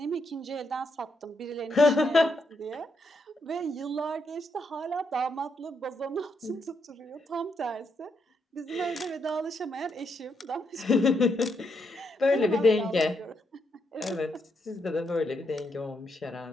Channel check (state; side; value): normal; both; correlation 0.79